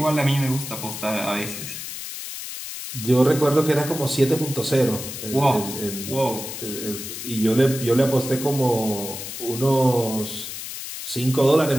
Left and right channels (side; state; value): left; noise; hiss, 8 dB below the sound